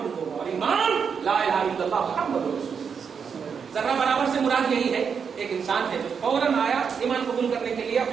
ہوگا، اور ایمان لا الہ الا اللہ محمد رسول اللہ۔ ذرہ برابر سے مراد یہی ہے، ایک انسان ہے جو فوراً آیا ایمان قبول کرنے کے لیے،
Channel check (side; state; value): left; quieter; 6.5 dB